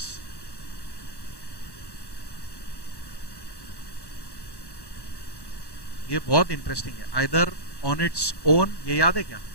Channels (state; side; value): late; right; 1.1 ms